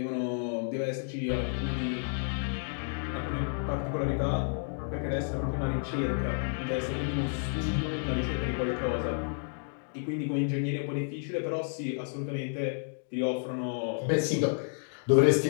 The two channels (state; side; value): silent; right; digital silence